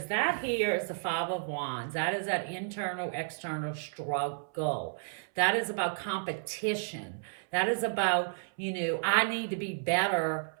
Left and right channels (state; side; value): silent; left; 56 dB below the other